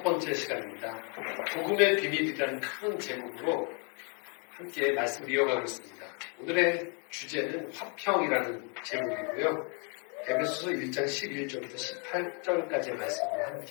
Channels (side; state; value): right; quieter; 37.1 dB